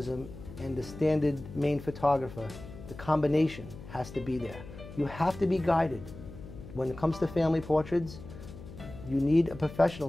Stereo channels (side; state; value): left; noise; hum, 14 dB below the sound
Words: and the standard main photographer, the combination has to be there. You have to be guided. When it comes to family portraits, you need a professional